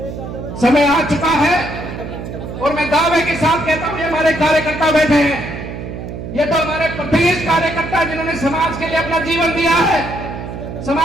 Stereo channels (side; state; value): right; noise; hum, 8 dB below the sound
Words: समय आ चुका है और मैं दावे के साथ कहता हूं, ये हमारे कार्यकर्ता बैठे हैं, ये तो हमारे प्रदेश कार्यकर्ता जिन्होंने समाज के लिए अपना जीवन दिया है,